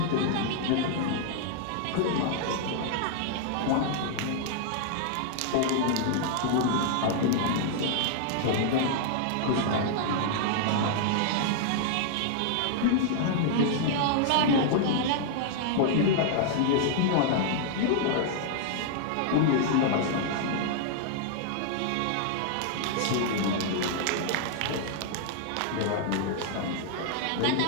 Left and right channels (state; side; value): different; both; correlation -0.01